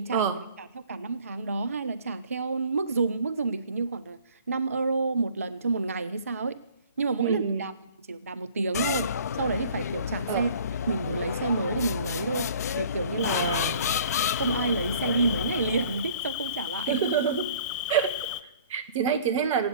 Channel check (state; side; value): inverted; both; correlation -0.51